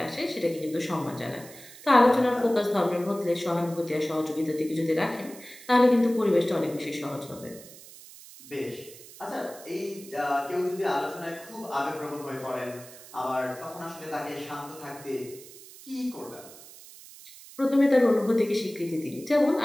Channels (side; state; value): right; noise; hiss, 18 dB below the sound